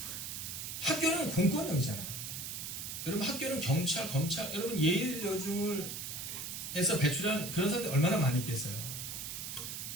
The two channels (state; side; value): noise; right; hiss, 6 dB below the sound